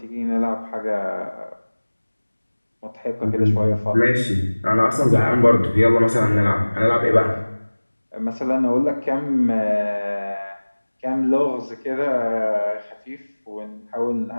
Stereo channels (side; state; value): both; inverted; correlation -1.00